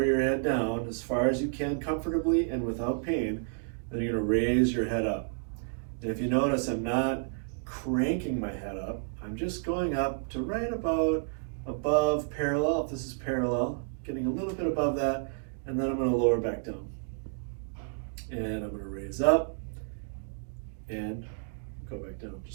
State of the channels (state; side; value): silent; left; digital silence